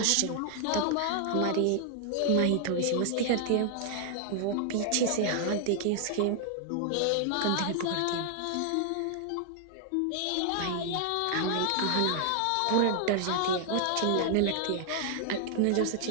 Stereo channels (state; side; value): different; both; correlation 0.00